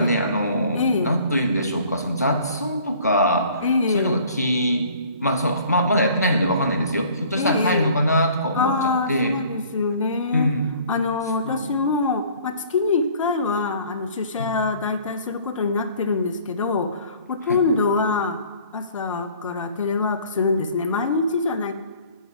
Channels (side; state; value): both; inverted; correlation -0.52